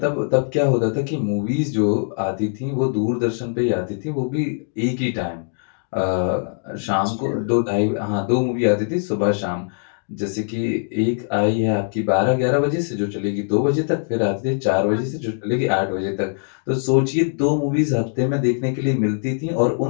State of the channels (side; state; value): right; silent; digital silence